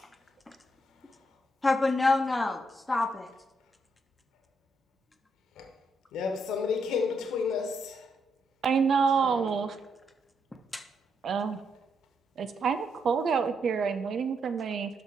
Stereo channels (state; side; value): normal; both; correlation 0.78